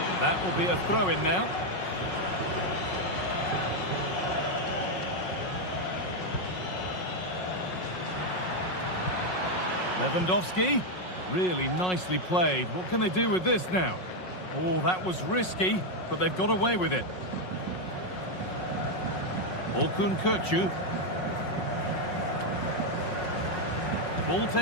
That will be a throw-in now. Lewandowski. Really nicely played. What can they do with this now? Oh, that was risky, but they've got away with it. Orkun Kökçü. The ball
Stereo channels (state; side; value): late; right; 5.5 ms